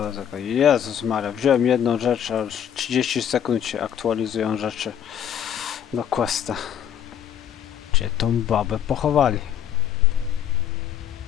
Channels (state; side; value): quieter; right; 9.5 dB